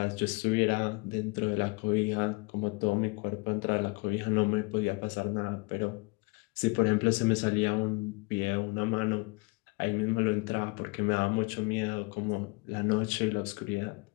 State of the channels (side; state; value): right; quieter; 28.0 dB